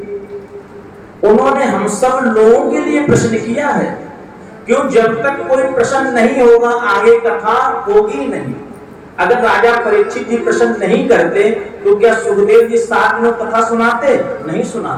उन्होंने हम सब लोगों के लिए प्रश्न किया है। क्यों? जब तक कोई प्रश्न नहीं होगा आगे कथा होगी नहीं। अगर राजा परीक्षित जी प्रश्न नहीं करते तो क्या सुखदेव जी 7 दिनों कथा सुनाते? नहीं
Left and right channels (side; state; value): both; identical; correlation 1.00